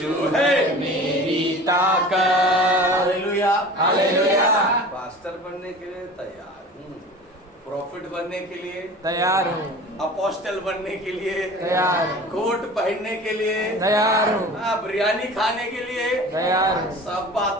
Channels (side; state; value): both; normal; correlation 0.39